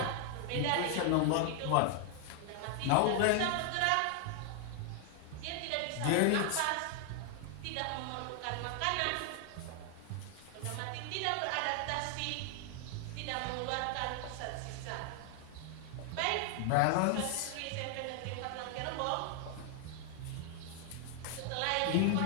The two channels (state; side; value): different; both; correlation 0.00